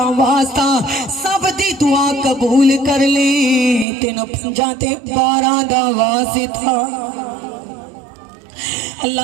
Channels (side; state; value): left; drops out; at 3.9 s